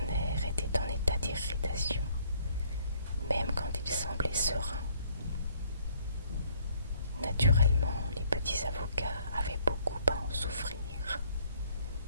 était en état d'irritation, même quand il semblait serein. Naturellement, les petits avocats avaient beaucoup à en souffrir.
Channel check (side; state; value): both; inverted; correlation -0.63